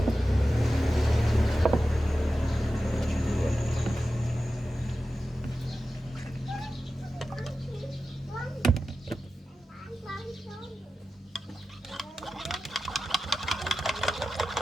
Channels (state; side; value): normal; both; correlation 0.93